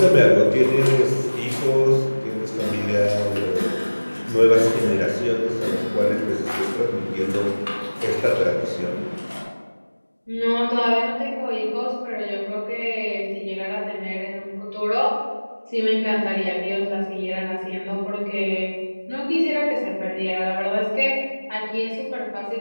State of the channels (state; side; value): inverted; both; correlation -1.00